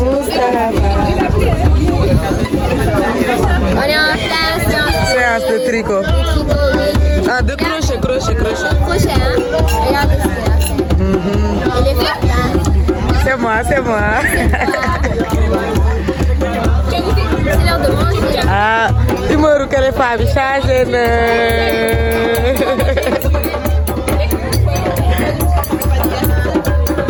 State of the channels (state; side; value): identical; both; correlation 1.00